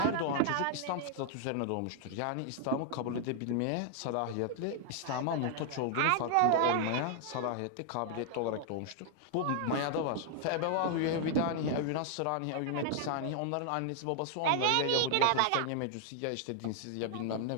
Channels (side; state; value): both; different; correlation 0.00